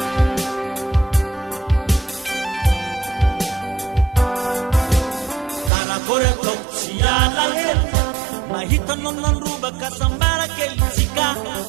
karakory ataoko tsy alahelo mahitanao nandrobaka sambara kelitsika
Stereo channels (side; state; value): left; drops out; at 5.7 s